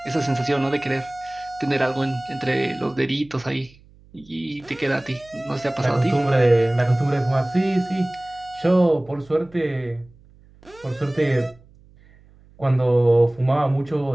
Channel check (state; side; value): noise; right; hum, 27 dB below the sound